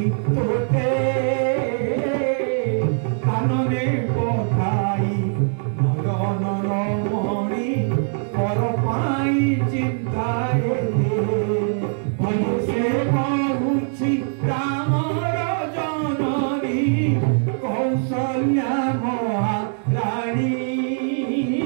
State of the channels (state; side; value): silent; left; 64 dB below the other